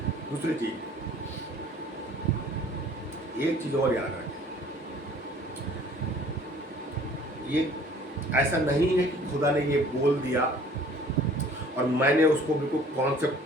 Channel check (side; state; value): both; normal; correlation 0.52